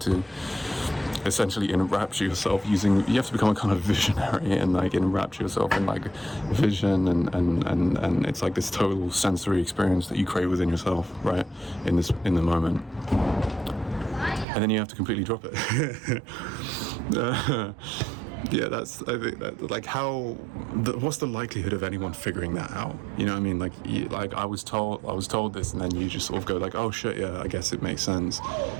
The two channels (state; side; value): drops out; left; at 14.5 s